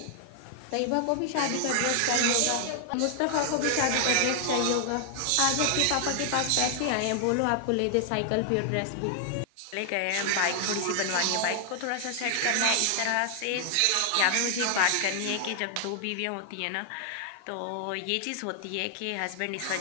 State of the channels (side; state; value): both; different; correlation 0.00